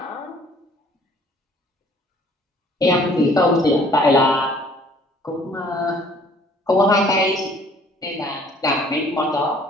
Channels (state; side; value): normal; both; correlation 0.57